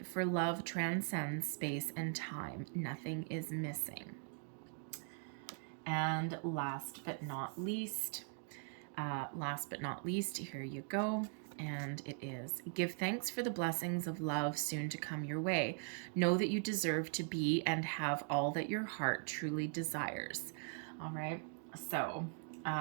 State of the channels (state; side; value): silent; left; 51 dB below the other